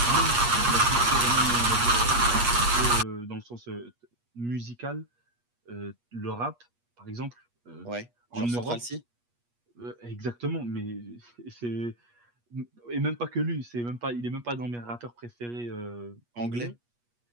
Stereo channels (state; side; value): late; left; 8.4 ms